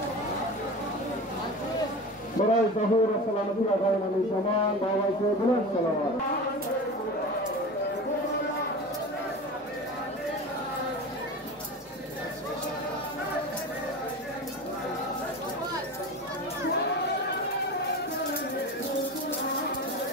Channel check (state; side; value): normal; both; correlation 0.30